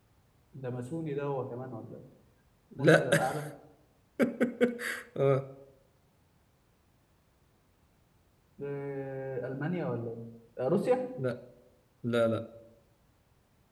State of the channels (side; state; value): both; identical; correlation 1.00